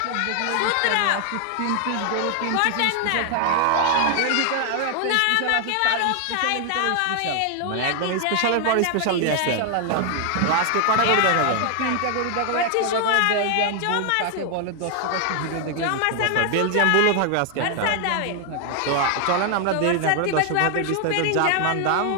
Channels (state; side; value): different; both; correlation 0.00